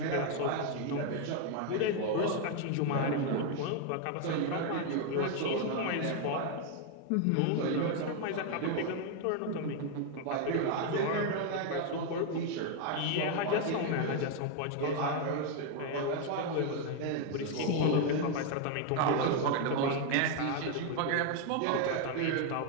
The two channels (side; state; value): both; different; correlation 0.00